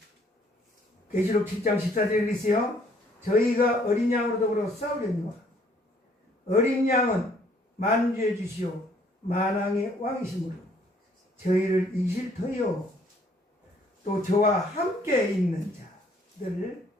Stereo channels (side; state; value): both; normal; correlation 0.63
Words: 계시록 7장 14절에 있어요. 저희가 어린 양으로 더불어 싸우려니와 어린 양은 만주해 주시오 만왕의 왕이시므로 저희를 이길 터이요 또 저와 함께 있는 자들을